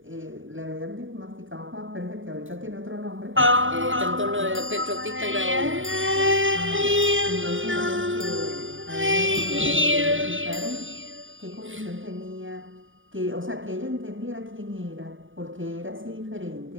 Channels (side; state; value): left; late; 0.57 ms